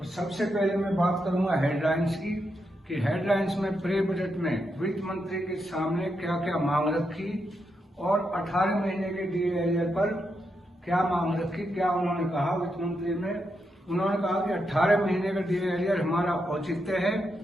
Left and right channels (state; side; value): normal; both; correlation 0.83